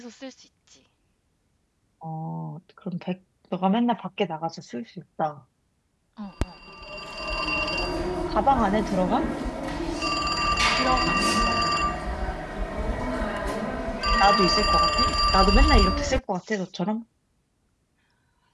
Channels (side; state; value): both; identical; correlation 1.00